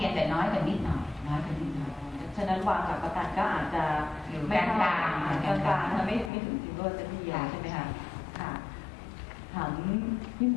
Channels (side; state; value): right; drops out; at 6.3 s